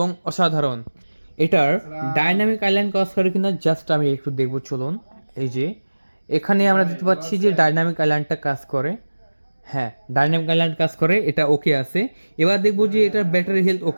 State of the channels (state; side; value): inverted; both; correlation -1.00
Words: অসাধারণ। এটার ডাইনামিক আইল্যান্ড কাজ করে কিনা জাস্ট আমি একটু দেখবো, চলুন। এই যে এখানে আমরা দেখতে পাচ্ছি যে ডাইনামিক আইল্যান্ডটা কাজ করে। হ্যাঁ, ডাইনামিক আইল্যান্ড কাজ করে, এটা ওকে আছে। এবার দেখবো যে এটার ব্যাটারি হেলথ